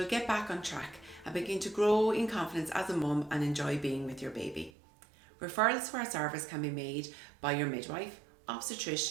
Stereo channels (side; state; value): left; drops out; at 4.7 s